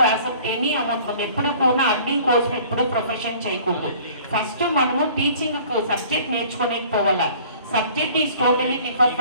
accept any amount. ఎప్పుడు కూడా అర్నింగ్ కోర్స్ ఎప్పుడు ప్రొఫెషన్ చేయకూడదు. ఫస్ట్ మనము టీచింగ్ సబ్జెక్ట్ నేర్చుకోలేకపోవాలా. Subject is totally different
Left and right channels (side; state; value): both; inverted; correlation -0.51